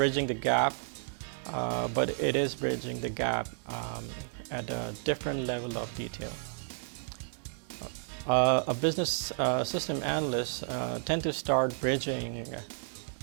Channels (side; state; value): left; silent; digital silence